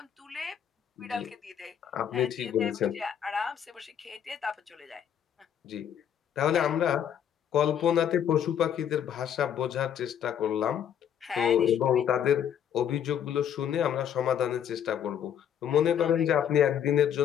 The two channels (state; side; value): quieter; right; 9.1 dB